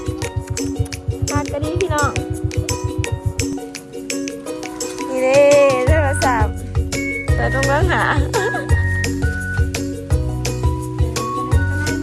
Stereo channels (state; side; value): identical; both; correlation 1.00